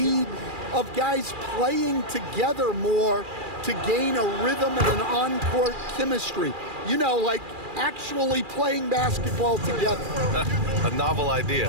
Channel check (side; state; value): left; late; 2.4 ms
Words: of guys playing together more to gain a rhythm and an on-court chemistry. You know, like actually playing basketball together. A novel